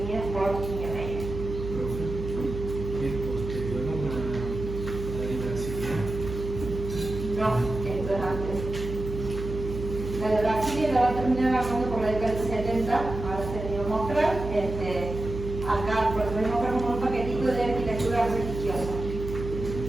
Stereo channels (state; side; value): noise; right; hum, 7 dB below the sound